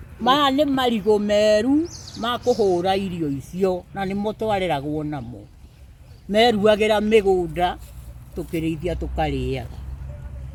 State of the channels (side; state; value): both; identical; correlation 1.00